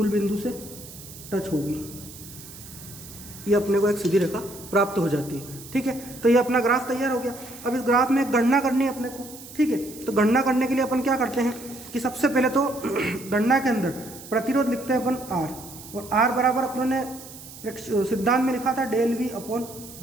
बिंदु से टच होगी। ये अपने को एक सीधी रेखा प्राप्त हो जाती है, ठीक है। तो ये अपना ग्राफ तैयार हो गया। अब इस ग्राफ में गणना करनी है अपने को, ठीक है। तो गणना करने के लिए अपन क्या करते हैं कि सबसे पहले तो गणना के अंदर प्रतिरोध लिखते हैं अपन R, और R बराबर अपनों ने सिद्धांत में लिखा था del V upon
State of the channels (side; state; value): right; noise; hiss, 16 dB below the sound